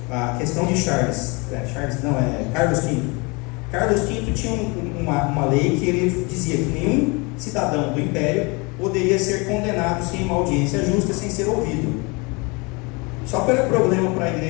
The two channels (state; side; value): quieter; right; 28.4 dB